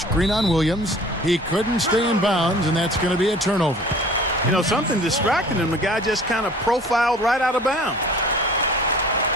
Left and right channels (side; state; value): both; normal; correlation 0.47